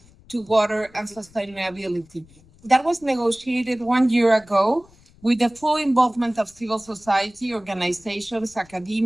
to water and sustainability. That was negotiated 1 year ago with the full involvement of civil society, organizations,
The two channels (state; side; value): noise; left; rumble, 27 dB below the sound